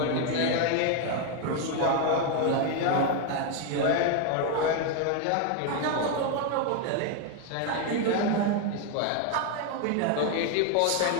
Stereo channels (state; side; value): different; both; correlation 0.01